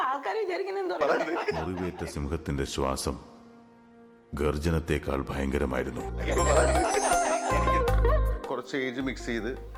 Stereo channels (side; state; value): both; identical; correlation 1.00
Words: ആൾക്കാർ വിചാരിക്കുന്ന മുറിവേറ്റ സിംഹത്തിന്റെ ശ്വാസം ഗർജനത്തെക്കാൾ ഭയങ്കരമായിരുന്നു. കുറച്ച് ഏജ് മിക്സ് ചെയ്ത്